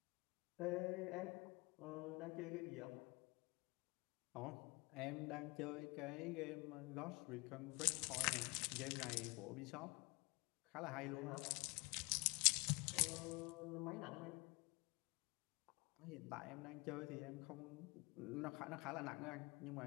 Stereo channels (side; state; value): right; quieter; 27.6 dB